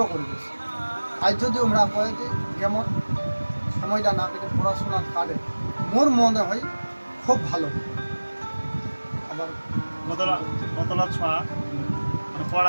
করে দিচ্ছি। আজ যদি আমরা কয়ে যে যেমন সময়টা না কেটে পড়াশোনা কাটে, মোর মনে হয় খুব ভালো। আবার কতলা কতলা ছড়া মানে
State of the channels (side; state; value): both; inverted; correlation -1.00